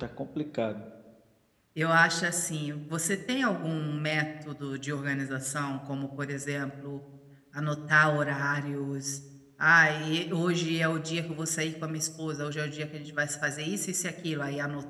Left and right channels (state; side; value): identical; both; correlation 1.00